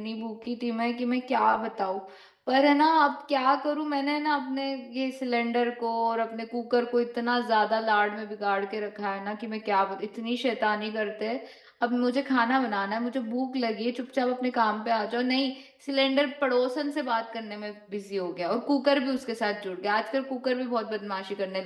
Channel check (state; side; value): identical; both; correlation 1.00